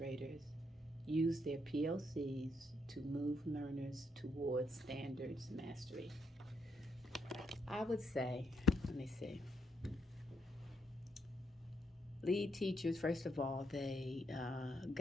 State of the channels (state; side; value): normal; both; correlation 0.77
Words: use their PLCs to move learners towards standards mastery? I would say, let me see, lead teachers, first of all, they